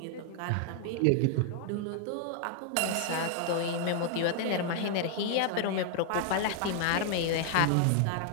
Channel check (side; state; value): both; different; correlation 0.00